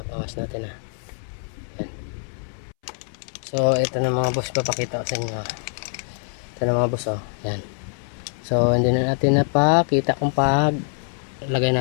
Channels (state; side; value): silent; right; 63 dB below the other